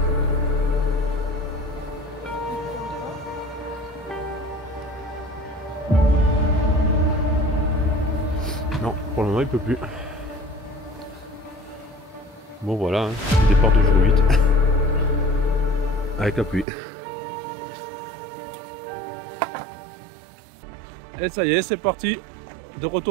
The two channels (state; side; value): drops out; left; at 16.7 s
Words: Non, pour le moment il peut plus. Bon voilà, hein, départ de jour 8. Avec la pluie. Et ça y est, c'est parti. De